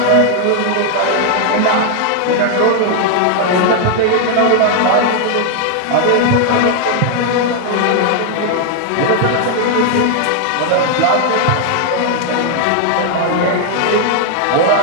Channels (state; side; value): different; both; correlation 0.00